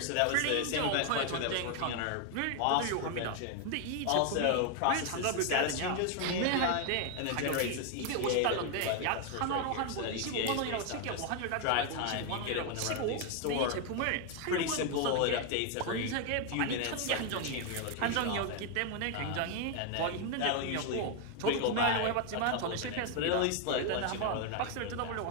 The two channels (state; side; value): different; both; correlation 0.01